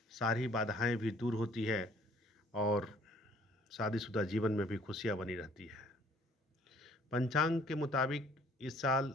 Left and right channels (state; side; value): normal; both; correlation 0.59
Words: सारी बाधाएं भी दूर होती है और शादीशुदा जीवन में भी खुशियां बनी रहती है। पंचांग के मुताबिक इस साल